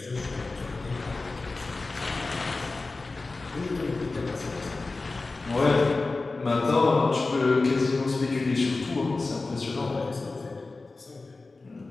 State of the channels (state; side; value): quieter; right; 3.5 dB